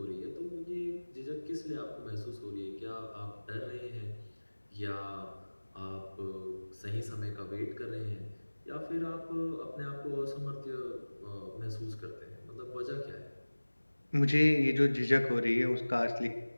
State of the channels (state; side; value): inverted; both; correlation -1.00